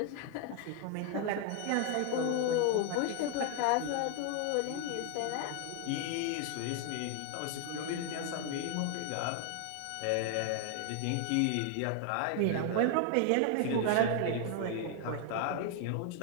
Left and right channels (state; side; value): different; both; correlation 0.00